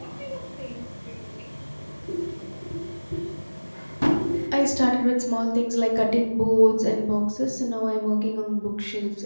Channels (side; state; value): both; inverted; correlation -1.00